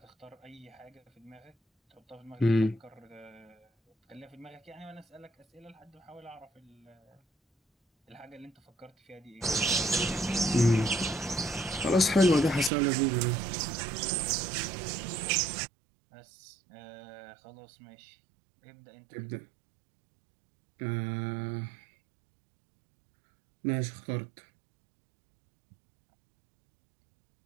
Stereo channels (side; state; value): left; drops out; at 12.7 s